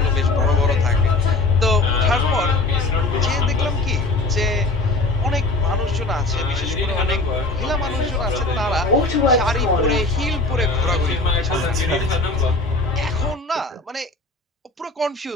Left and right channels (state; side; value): quieter; right; 3.2 dB